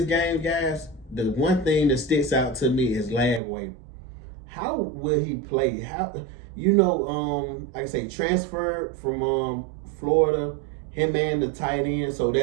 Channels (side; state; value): left; drops out; at 3.4 s